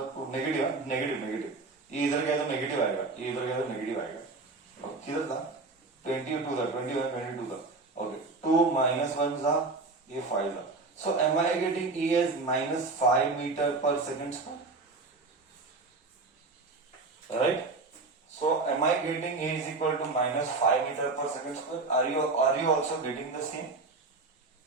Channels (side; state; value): left; quieter; 3.7 dB